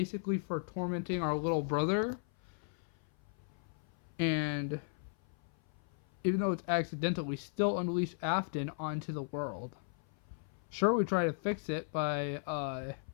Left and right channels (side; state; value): right; silent; 54 dB below the other